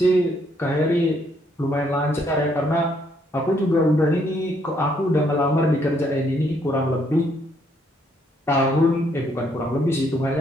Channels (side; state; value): both; normal; correlation 0.70